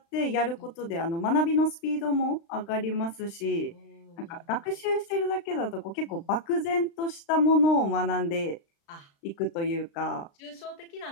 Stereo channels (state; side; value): late; right; 35 ms